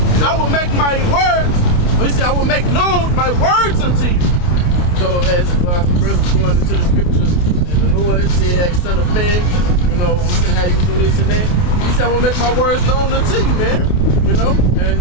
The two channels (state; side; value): late; right; 28 ms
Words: I will make my words. He said, I will make known my words unto you. So as the brothers going into the scriptures, and the Lord said, hey, son of man, you know, I'm gonna have you do this and that. He said, I will make my words known unto you, man. You know?